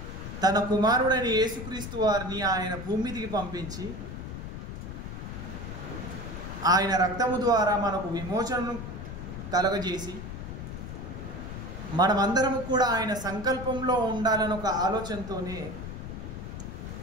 తన కుమారుడైన యేసుక్రీస్తు వారిని ఆయన భూమిదికి పంపించి ఆయన రక్తము ద్వారా మనకు విమోచనను కలగజేసి మనమందరము కూడా ఆయన సంకల్పంలో ఉండాలని ఒక ఆలోచనతోనే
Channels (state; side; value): noise; left; rumble, 8 dB below the sound